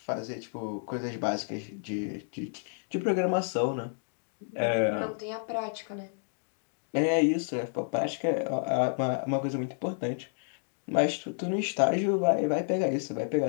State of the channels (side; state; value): right; silent; digital silence